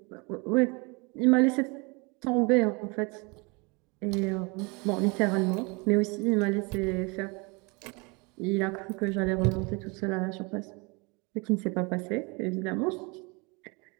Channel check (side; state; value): left; quieter; 29.2 dB